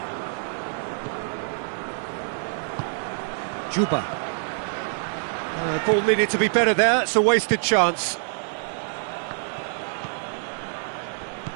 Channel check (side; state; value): left; silent; 61 dB below the other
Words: Dixuha. Ball needed to be better there, it's a wasted chance.